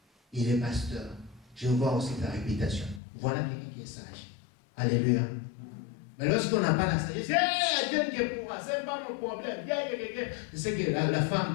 Il est pasteur. Je vois aussi ta réputation. Voilà quelqu'un qui est sage. Alléluia. Mais lorsqu'on n'a pas la sagesse, Dieu qui est pour moi, ce n'est pas mon problème. C'est ce que la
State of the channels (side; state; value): right; drops out; at 3.0 s